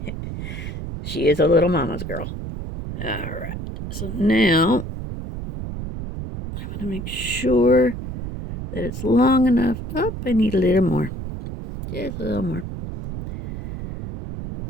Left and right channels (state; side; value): noise; right; rumble, 7 dB below the sound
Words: She is a little mama's girl. All right. So now I want to make sure that it's long enough. Oh, I need a little more. Just a little more.